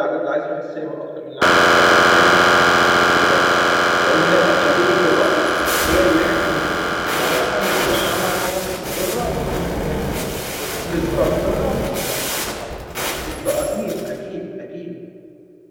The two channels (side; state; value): both; identical; correlation 1.00